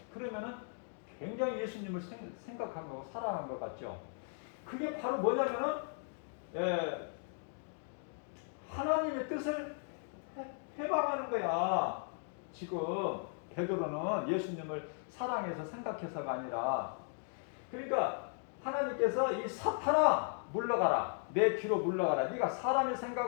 그러면은 굉장히 예수님을 생각한 거고 사랑한 것 같죠? 그게 바로 뭐냐면은 하나님의 뜻을 해방하는 거야. 지금 베드로는 예수님을 사랑해서 생각해서가 아니라, 그러니까 하나님께서 이 사탄아 물러가라, 내 뒤로 물러가라. 네가 사람의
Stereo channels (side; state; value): right; silent; 53 dB below the other